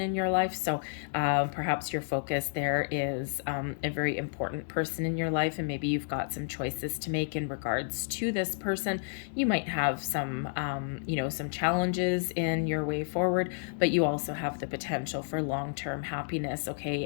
your life. So perhaps your focus there is a very important person in your life, and maybe you've got some choices to make in regards to this person. You might have some, some challenges in your way forward, but you also have the potential for long-term happiness, okay?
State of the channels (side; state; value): right; silent; digital silence